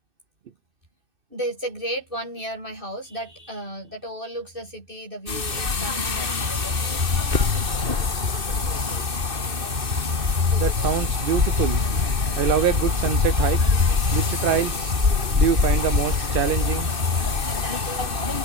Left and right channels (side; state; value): left; late; 2.6 ms